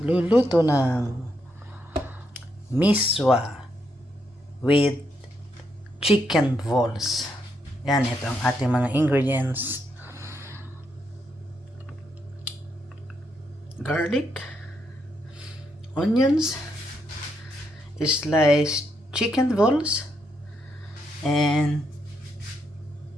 ng Misua with chicken balls. Yan, ito ang ating mga ingredients. Garlic, onions, sliced chicken balls, and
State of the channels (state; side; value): normal; both; correlation 0.79